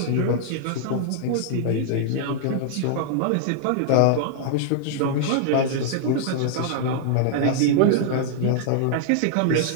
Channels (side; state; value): both; different; correlation -0.01